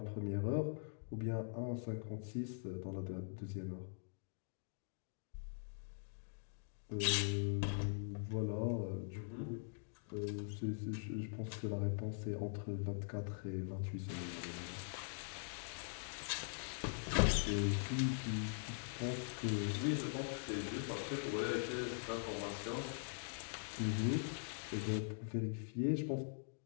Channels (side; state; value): right; silent; digital silence